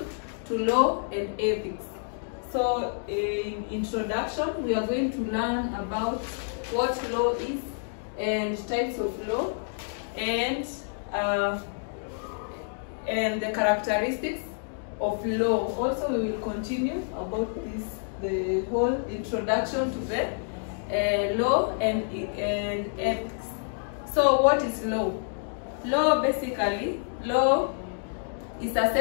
to Law and Ethics. So in introduction, we are going to learn about what law is and types of law and the characteristics of law. Also, we will continue about the whole introduction to the law and ethics. So what is law? Law, basically, law is a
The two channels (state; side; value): silent; right; digital silence